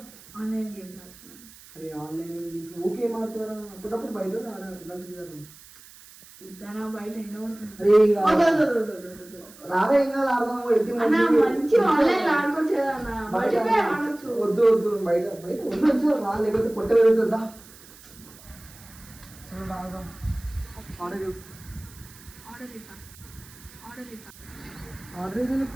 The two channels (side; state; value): right; noise; hiss, 21 dB below the sound